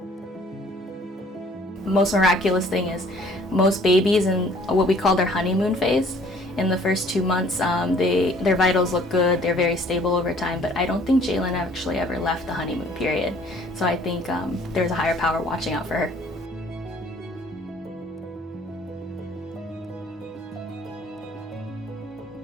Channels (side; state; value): both; normal; correlation 0.56